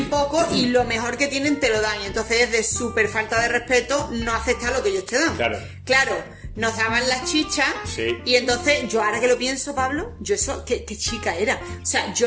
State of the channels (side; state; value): both; identical; correlation 1.00